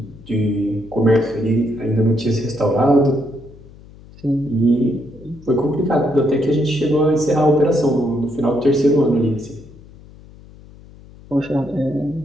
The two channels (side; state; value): left; noise; hum, 21 dB below the sound